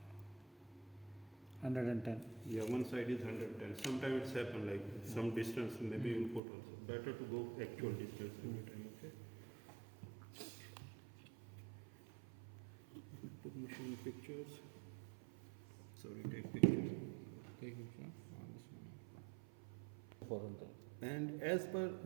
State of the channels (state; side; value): drops out; left; at 6.4 s